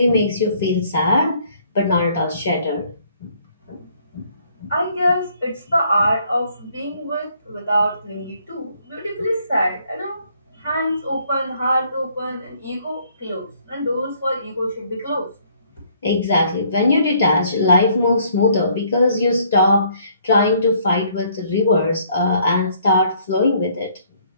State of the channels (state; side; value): inverted; both; correlation -0.64